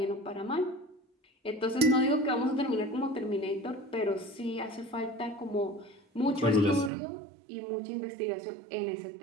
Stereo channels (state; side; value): drops out; left; at 6.9 s